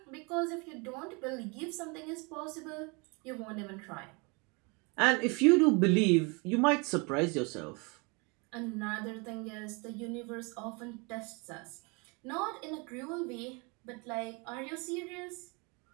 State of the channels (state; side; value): quieter; left; 30.2 dB